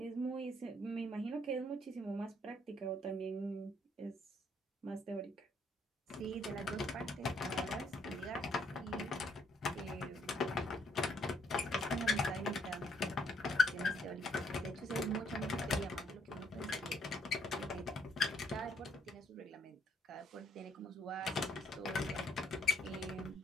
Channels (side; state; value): both; normal; correlation 0.69